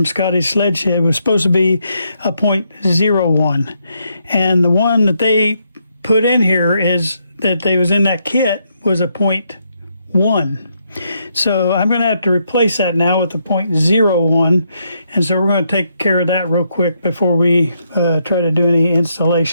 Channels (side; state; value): both; inverted; correlation -0.77